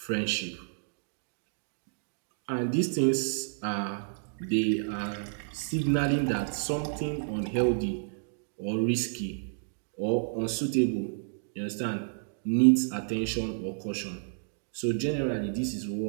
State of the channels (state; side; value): silent; left; digital silence